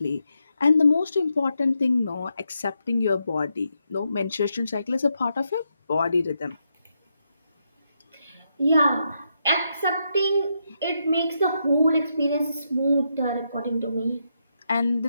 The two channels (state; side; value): inverted; both; correlation -0.82